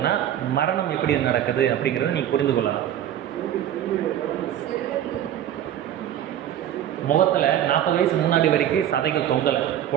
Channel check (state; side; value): quieter; left; 11.1 dB